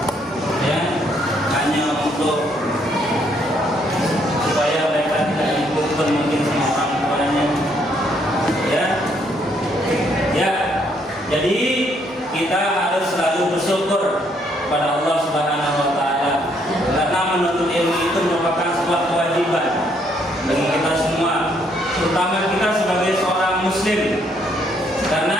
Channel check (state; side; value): normal; both; correlation 0.70